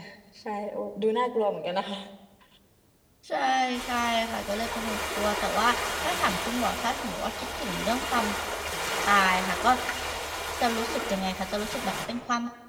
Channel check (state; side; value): identical; both; correlation 1.00